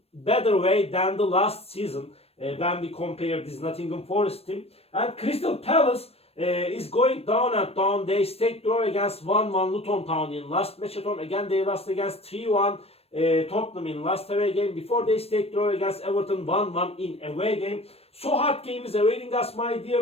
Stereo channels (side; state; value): right; late; 0.29 ms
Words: better way than the last season when we compare this Nottingham Forest team. And Crystal Palace is going down and down. They stayed draw against 1-1 Luton Town in last match at home. Again, they lost against 3-1 Tottenham in last away game. Before they stayed draw against Everton 1-1 in away game. So hard game is awaiting us, my